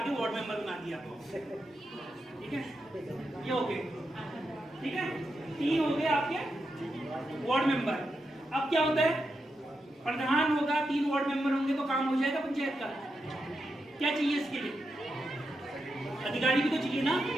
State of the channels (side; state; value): both; normal; correlation 0.86